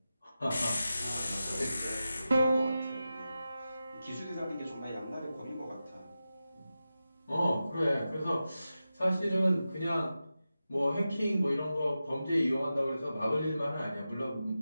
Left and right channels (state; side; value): inverted; both; correlation -0.92